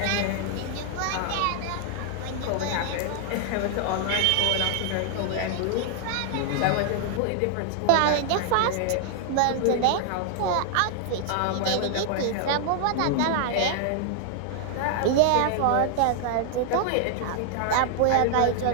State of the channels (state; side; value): different; both; correlation 0.00